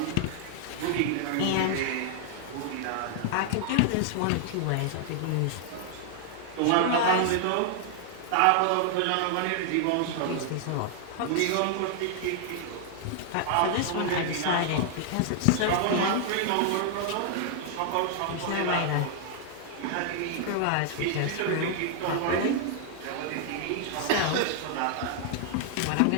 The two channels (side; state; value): both; different; correlation 0.00